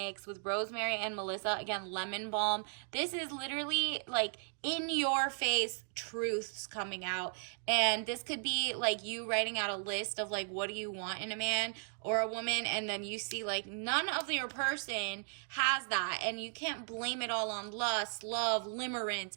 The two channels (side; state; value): left; silent; 54 dB below the other